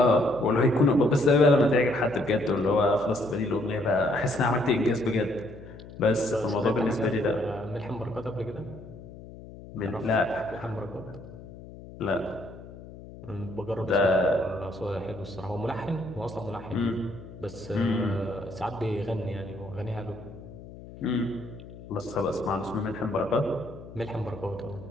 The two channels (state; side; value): noise; left; hum, 16 dB below the sound